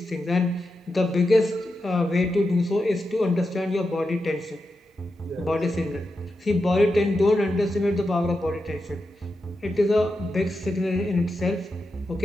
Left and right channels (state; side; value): normal; both; correlation 0.88